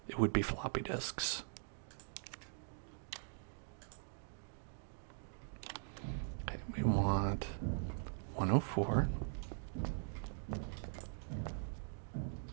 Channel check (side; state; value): left; silent; digital silence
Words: it would be floppy disks. Okay, we want 104.